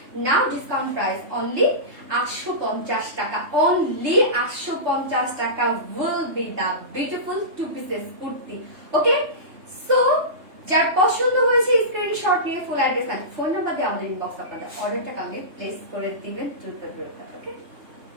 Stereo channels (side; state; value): left; late; 3.3 ms